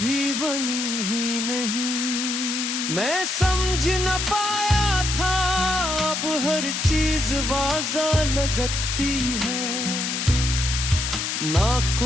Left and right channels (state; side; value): noise; left; hiss, 2 dB below the sound